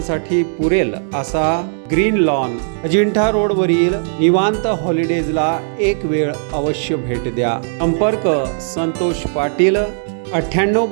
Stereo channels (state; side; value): silent; left; 68 dB below the other